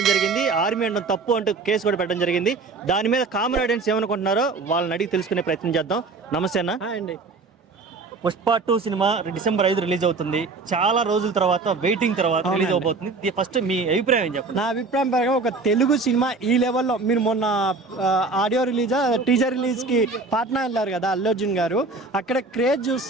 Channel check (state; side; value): quieter; left; 3.9 dB